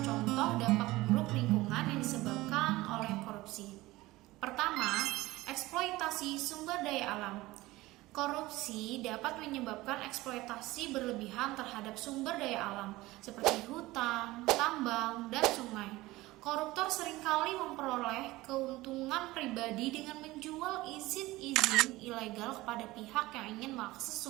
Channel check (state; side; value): quieter; left; 19.1 dB